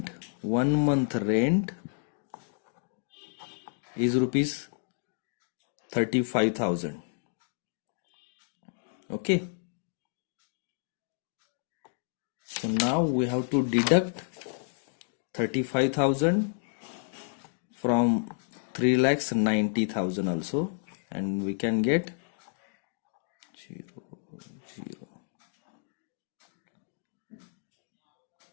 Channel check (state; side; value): silent; right; digital silence